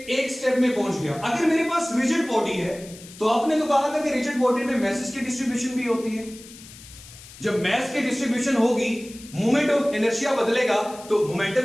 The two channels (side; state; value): left; noise; hiss, 18 dB below the sound